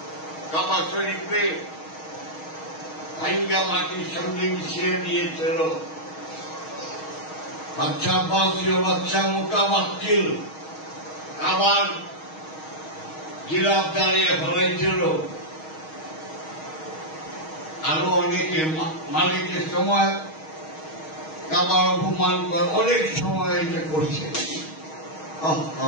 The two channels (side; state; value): right; late; 6.4 ms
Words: কাবা শরীফে ভাঙ্গা মাটির সঙ্গে মিশিয়ে দিয়েছিল। বাচ্চা বাসীয় বাচ্চা মোটাবাক্কিল আবার গিলাফ দাঁড়িয়ে ফেলাইছিল। আরো অনেকে মালিকের সময় কাবার অপমান করে অনেক সময় এটা করছে।